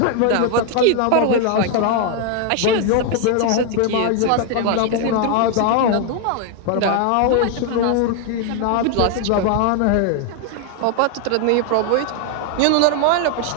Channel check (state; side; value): different; both; correlation 0.00